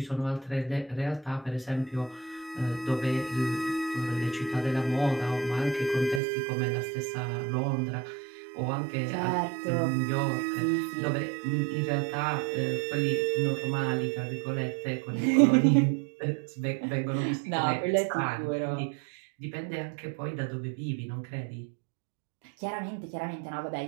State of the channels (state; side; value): drops out; left; at 6.2 s